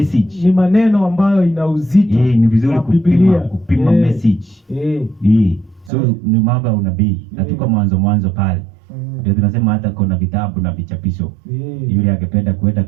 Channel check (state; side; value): drops out; left; at 5.9 s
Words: Ni maneno ambayo ina uzito. Ni vizuri kupima message. So ni mambo ya unabii. Na tuko mwanzo pale. Ndio tunasema hata kuna vitabu na vichapisho. Yule angependa kwenda